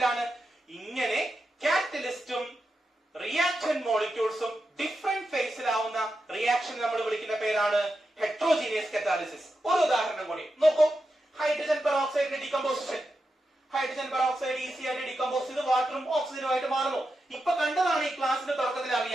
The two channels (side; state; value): both; normal; correlation 0.88